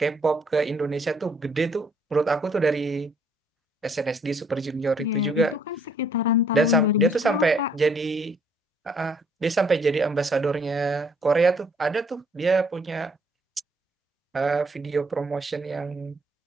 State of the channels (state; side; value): normal; both; correlation 0.64